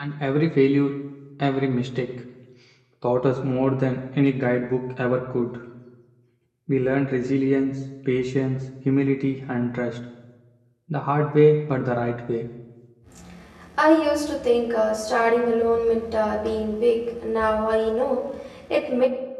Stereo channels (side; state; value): both; identical; correlation 1.00